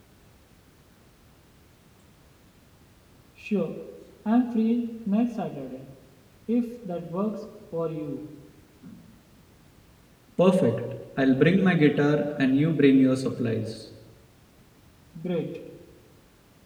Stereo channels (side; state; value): both; identical; correlation 1.00